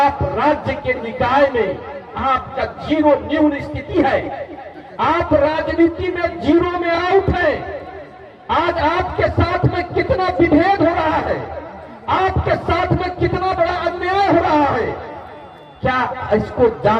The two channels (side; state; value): both; identical; correlation 1.00